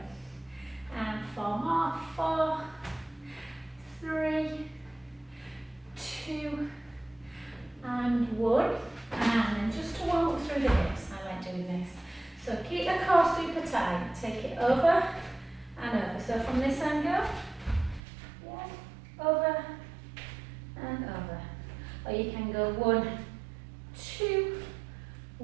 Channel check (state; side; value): drops out; left; at 18.0 s